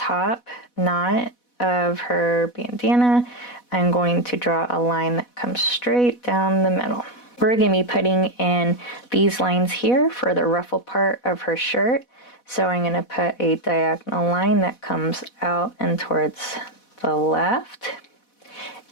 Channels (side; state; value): right; late; 4.1 ms